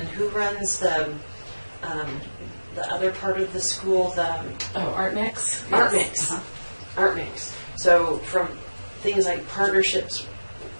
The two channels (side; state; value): both; inverted; correlation -1.00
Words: who runs the other part of the school, Art Mix. Art Yes. Mix. Art Mix. So from things like partnerships